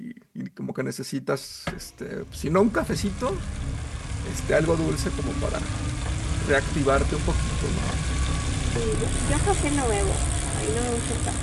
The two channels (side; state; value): both; identical; correlation 1.00